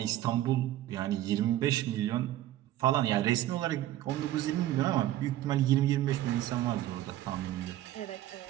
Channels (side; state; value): left; quieter; 13.8 dB